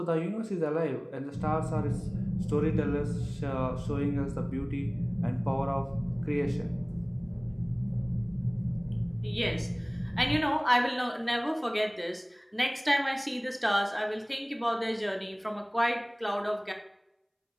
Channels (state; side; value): identical; both; correlation 1.00